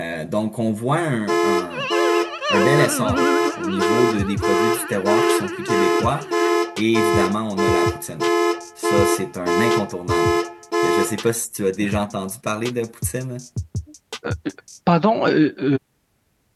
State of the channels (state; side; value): identical; both; correlation 1.00